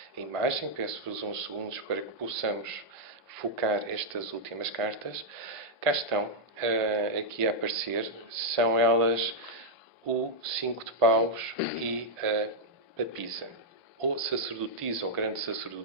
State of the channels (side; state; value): both; normal; correlation -0.04